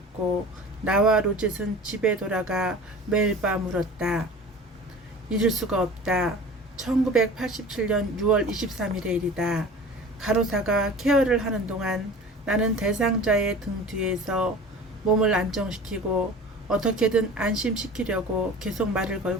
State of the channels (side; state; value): both; normal; correlation 0.39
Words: 나와 로젯은 집에 돌아가 매일 밤 울었다. 잊을 수가 없다. 1987년 6월 23일의 일이다. 간호사가 케어를 하는 동안 나는 대상자의 등 뒤에서 몸을 안정시키고 어떻게든 안심시키려고 계속 말을